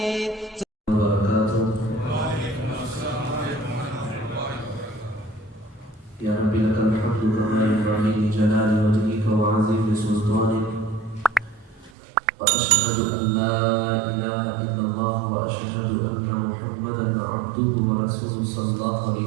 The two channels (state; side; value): drops out; left; at 11.9 s